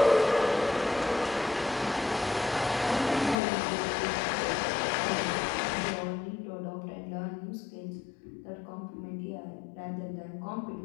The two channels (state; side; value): drops out; right; at 3.4 s